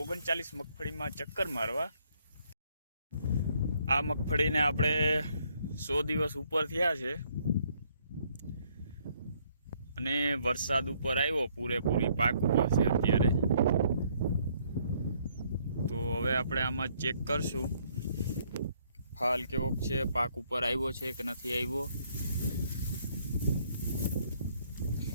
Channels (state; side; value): inverted; both; correlation -0.67